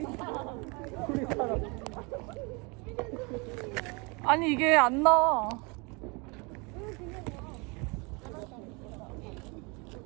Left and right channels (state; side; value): quieter; left; 29.5 dB